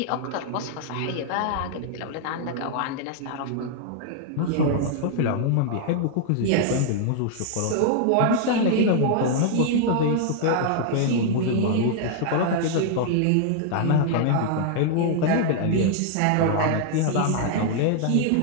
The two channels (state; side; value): different; both; correlation 0.00